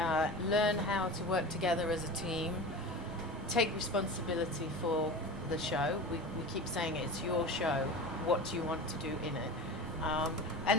how to work together as a team, take responsibility for the show. We keep saying it's your show. What do you want to do in it?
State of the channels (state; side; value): normal; both; correlation 0.31